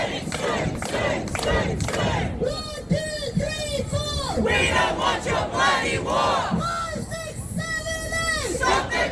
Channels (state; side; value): identical; both; correlation 1.00